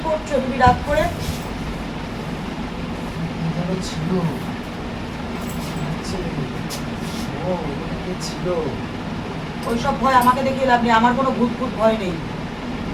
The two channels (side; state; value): both; identical; correlation 1.00